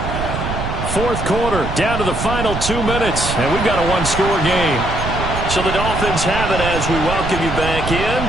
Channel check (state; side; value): noise; right; rumble, 5 dB below the sound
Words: Fourth quarter, down to the final 2 minutes, and we've got a 1-score game. So the Dolphins have it as we welcome you back in.